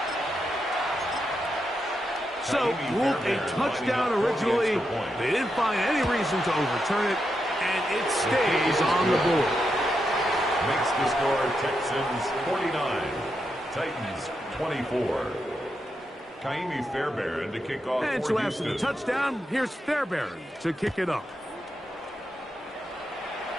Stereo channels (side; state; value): both; normal; correlation 0.85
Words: So, ruled a touchdown originally. They didn't find any reason to overturn it, and it stays on the board. Makes the score Texans 49, Titans 24. Kaimi Fairbairn to kick off and for so Houston. After the touchdown, here's Fairbairn to kick it off.